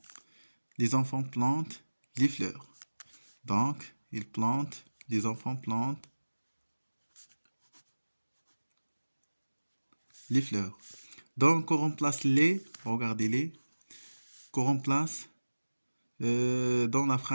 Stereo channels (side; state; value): both; inverted; correlation -1.00